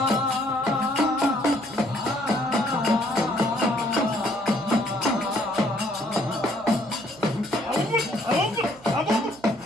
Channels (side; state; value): right; noise; hum, 24 dB below the sound